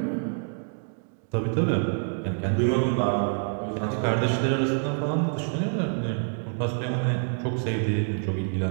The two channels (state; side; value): silent; left; 60 dB below the other